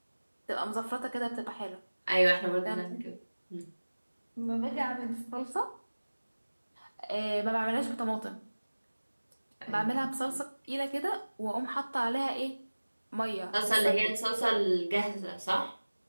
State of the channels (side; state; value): both; inverted; correlation -1.00